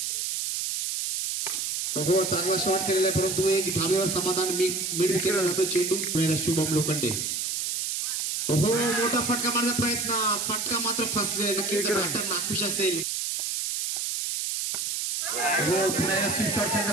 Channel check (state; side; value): noise; right; hiss, 1 dB below the sound